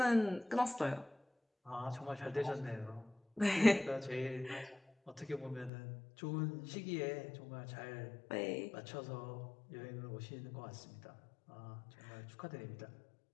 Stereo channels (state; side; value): drops out; right; at 5.7 s